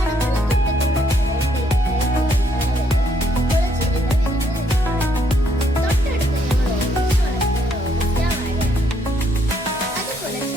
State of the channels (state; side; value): normal; both; correlation 0.71